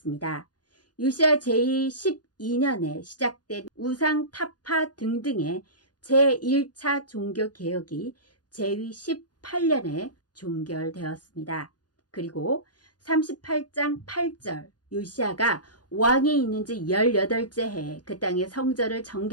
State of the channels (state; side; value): late; right; 0.69 ms